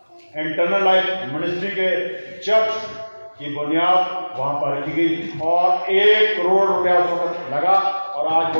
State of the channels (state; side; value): inverted; both; correlation -1.00